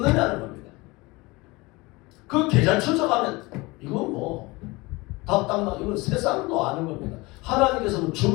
겁니다. 그 계좌 추적하면 이건 뭐 답답나, 이건 세상도 아는 겁니다. 하나님께서 뭐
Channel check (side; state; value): right; quieter; 23.3 dB